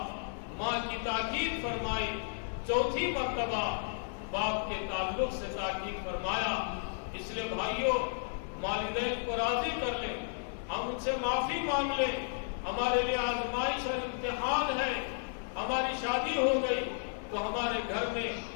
ماں کی تاکید فرمائی، 4تھی مرتبہ باپ کے تعلق سے تاکید فرمایا۔ اس لیے بھائیوں، والدین کو راضی کر لیں، ہم ان سے معافی مانگ لیں، ہمارے لیے آزمائش اور امتحان ہے۔ ہماری شادی ہو گئی تو ہمارے گھر میں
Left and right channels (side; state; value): right; silent; digital silence